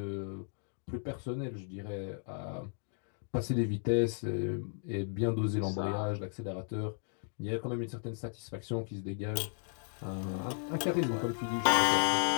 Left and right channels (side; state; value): right; silent; 55 dB below the other